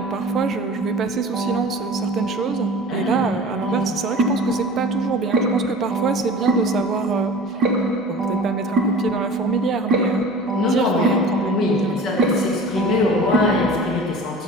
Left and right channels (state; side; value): normal; both; correlation 0.39